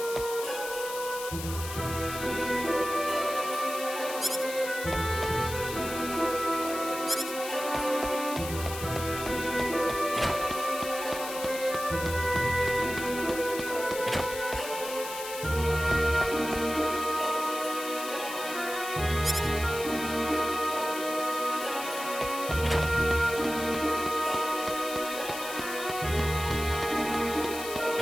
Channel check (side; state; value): left; noise; hiss, 9 dB below the sound